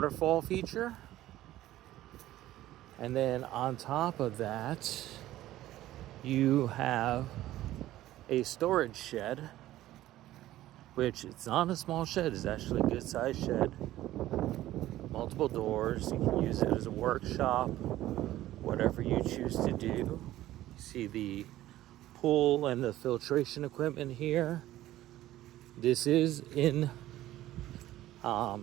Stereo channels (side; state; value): left; quieter; 14.7 dB